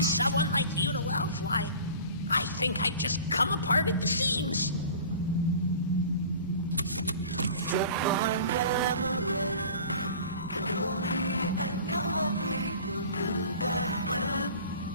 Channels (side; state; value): both; inverted; correlation -0.42